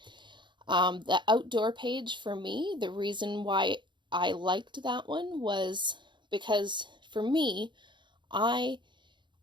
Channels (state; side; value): late; left; 0.23 ms